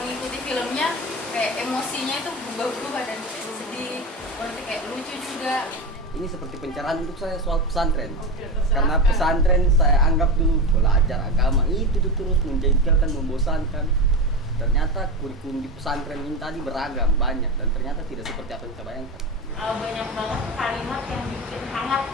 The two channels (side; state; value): both; normal; correlation 0.21